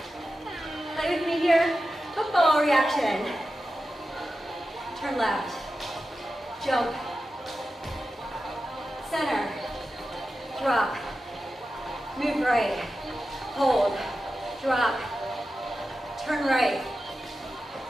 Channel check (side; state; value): both; normal; correlation 0.92